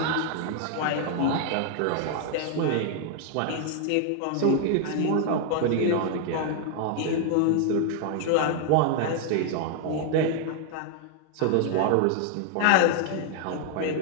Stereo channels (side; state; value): both; different; correlation 0.00